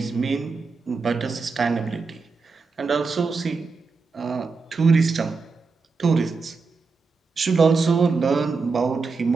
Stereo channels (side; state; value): left; quieter; 4.5 dB